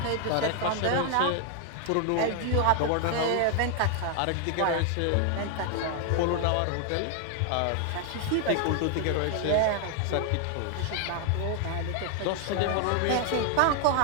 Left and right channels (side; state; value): both; different; correlation 0.00